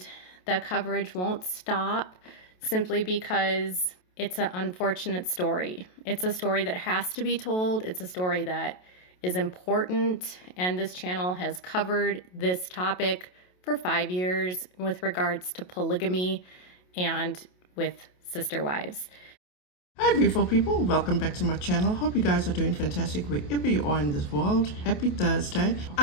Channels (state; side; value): late; right; 28 ms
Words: the coverage won't stop simply because it's an unfortunate story. It's a story that has to be told. It's a story that is important, and this channel has covered this topic for 5 years with regards to polygamy and with sister wives. Hi beautiful people, welcome back to my channel. Hope you guys are doing fantastic wherever you are in this world. Happy Thursday.